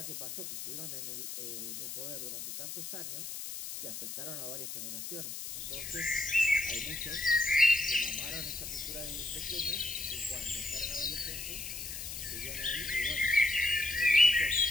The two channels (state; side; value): noise; left; hiss, 7 dB below the sound